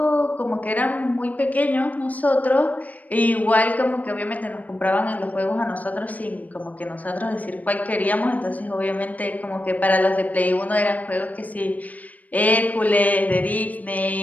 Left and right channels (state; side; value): late; right; 0.075 ms